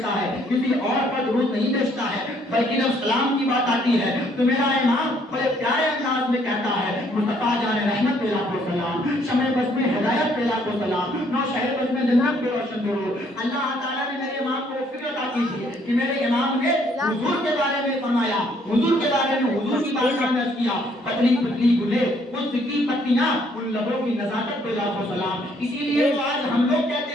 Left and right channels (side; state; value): both; normal; correlation 0.66